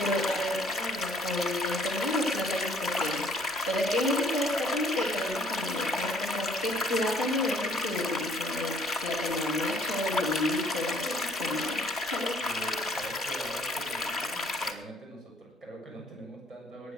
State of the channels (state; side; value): normal; both; correlation 0.59